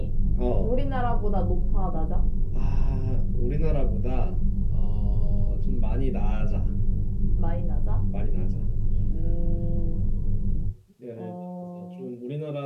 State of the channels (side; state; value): both; identical; correlation 1.00